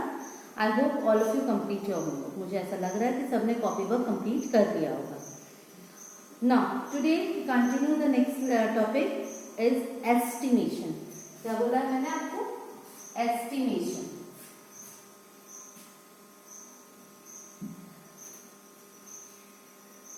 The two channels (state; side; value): identical; both; correlation 1.00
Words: I hope all of you complete your homework. मुझे ऐसा लग रहा है कि सबने कॉपी वर्क complete कर दिया होगा. Now, today we continue the next topic is estimation. क्या बोला है मैंने आपको? Estimation.